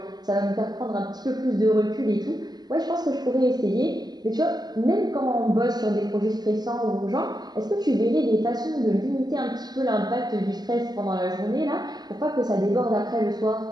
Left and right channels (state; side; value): late; left; 0.20 ms